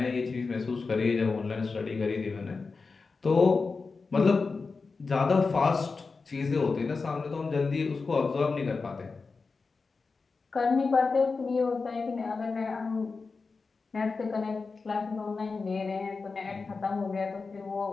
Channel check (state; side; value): quieter; right; 4.4 dB